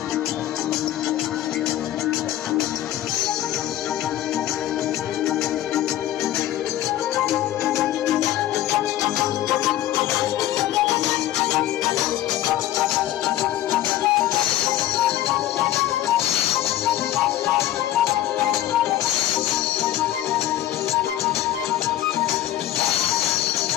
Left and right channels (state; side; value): quieter; right; 13.1 dB